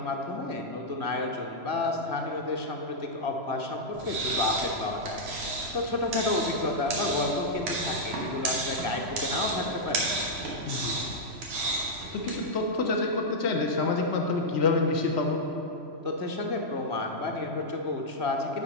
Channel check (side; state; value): left; late; 3.1 ms